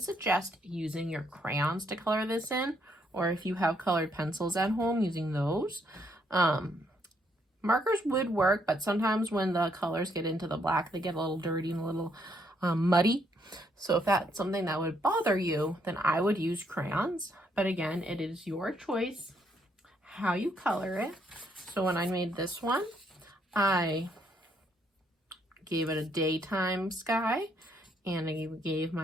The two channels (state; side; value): normal; both; correlation 0.73